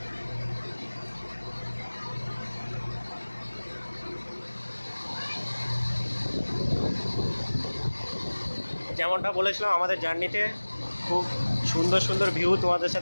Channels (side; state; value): both; inverted; correlation -1.00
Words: যেমনটা বলেছিলাম, আমাদের জার্নিতে খুব সুন্দর সুন্দর ভিউ তোমাদের